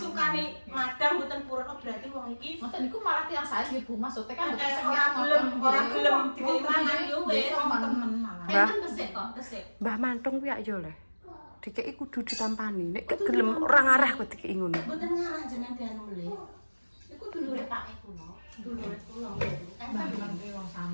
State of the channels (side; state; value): both; inverted; correlation -1.00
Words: madang mboten purun oh, berarti wong iki Ngoten niku malah tiyang saya nggih Bu, maksudnya kan mboten ora gelem dikei mangan yo wis. temen malah. Enten tesik kok, tesik. Mbah Mantung kuwi yo le. Dikeki kudu ditampani. Nek gak gelem ora ngarah kok dikeki ngono. Mboten ngarang jenengan dianu mlih. Iku Iku dulure Pak kuno. Dulure kula. Mbak ngerti wong